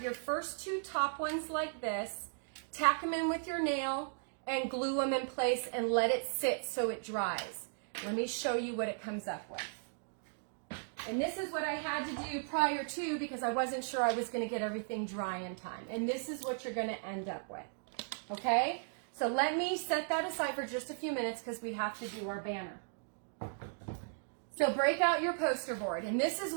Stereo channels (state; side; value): silent; left; digital silence